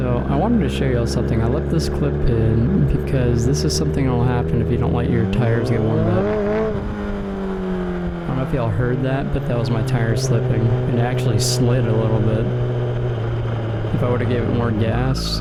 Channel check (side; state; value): both; identical; correlation 1.00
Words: I wanted to show y'all something. I left this clip in because this is something that will happen if you don't let your tires get warmed up. I don't know if y'all heard that, but that was my tire slipping. It actually slid a little bit. If I would have given it more gas,